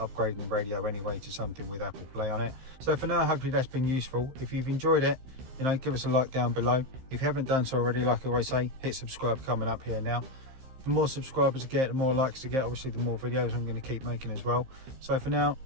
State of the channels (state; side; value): late; left; 15 ms